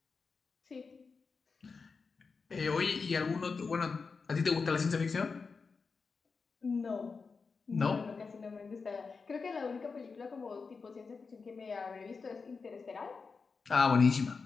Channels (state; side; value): quieter; right; 4.8 dB